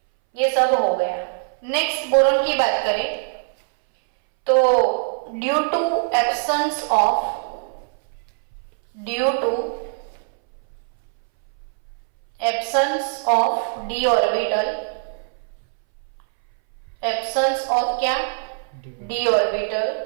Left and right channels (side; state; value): left; silent; 61 dB below the other